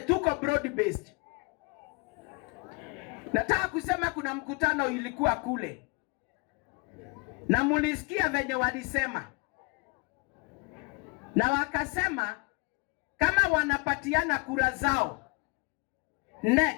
broad based. Nataka kusema kuna mkutano ilikuwa kule, na mulisikia venye walisema, na wakasema kama wanapatiana kura zao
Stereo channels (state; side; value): quieter; right; 29.7 dB